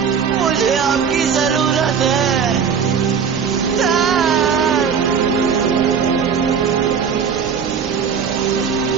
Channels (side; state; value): left; quieter; 6.8 dB